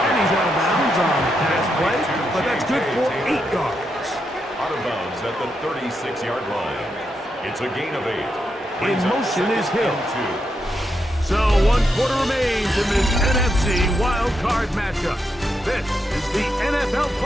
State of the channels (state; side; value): normal; both; correlation 0.83